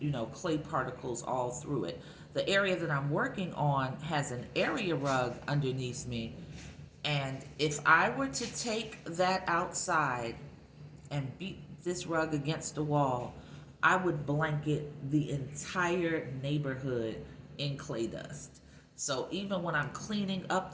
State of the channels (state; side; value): identical; both; correlation 1.00